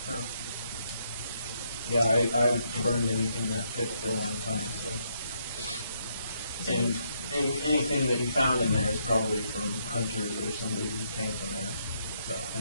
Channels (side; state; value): both; inverted; correlation -0.76